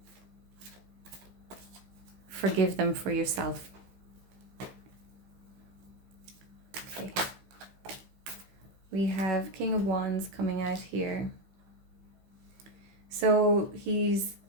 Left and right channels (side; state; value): left; late; 15 ms